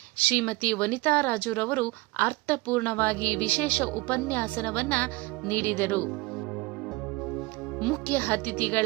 ಶ್ರೀಮತಿ ವನಿತಾ ರಾಜುರವರು ಅರ್ಥಪೂರ್ಣವಾಗಿ ವಿಶೇಷ ಉಪನ್ಯಾಸನವನ್ನ ನೀಡಿದರು. ಮುಖ್ಯ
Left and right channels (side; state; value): left; quieter; 22.6 dB